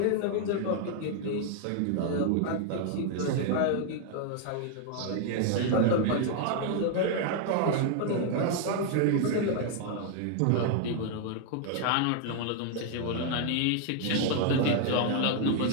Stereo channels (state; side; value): different; both; correlation 0.00